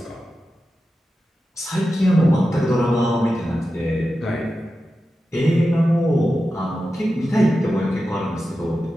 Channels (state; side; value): normal; both; correlation 0.92